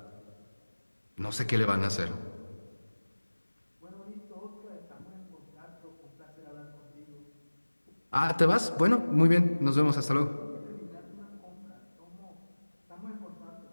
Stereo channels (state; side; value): inverted; both; correlation -1.00